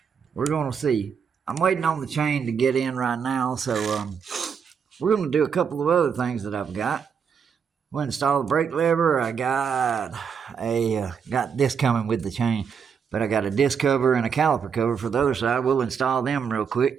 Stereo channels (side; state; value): left; quieter; 6.8 dB